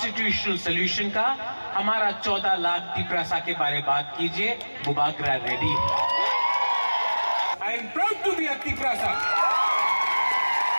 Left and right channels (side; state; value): both; inverted; correlation -1.00